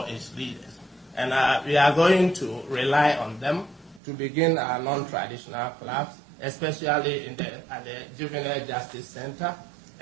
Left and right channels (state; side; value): drops out; left; at 4.0 s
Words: leaders. And we are going to rely on them to begin our non-traditional clubs, especially at the Juvenile Justice Center